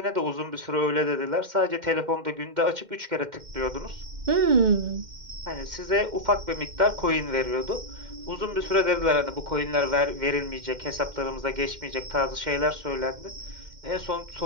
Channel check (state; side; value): late; left; 2.1 ms